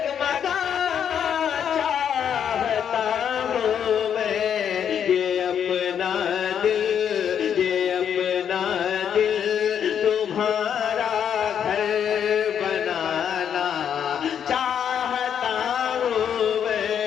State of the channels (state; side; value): quieter; right; 8.5 dB